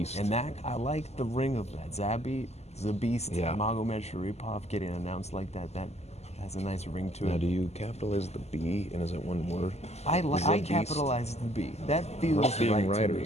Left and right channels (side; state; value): right; late; 0.31 ms